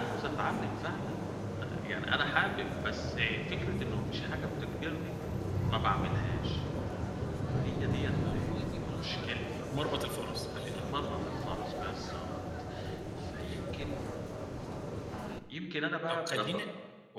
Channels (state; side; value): identical; both; correlation 1.00